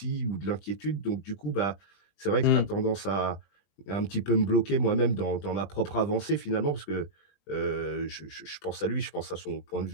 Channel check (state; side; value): late; right; 20 ms